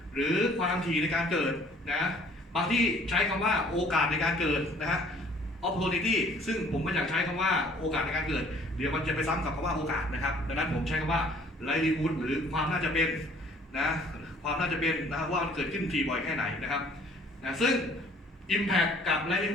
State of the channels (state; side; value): normal; both; correlation 0.56